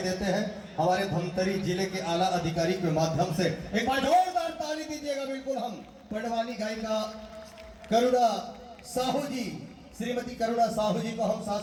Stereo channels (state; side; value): identical; both; correlation 1.00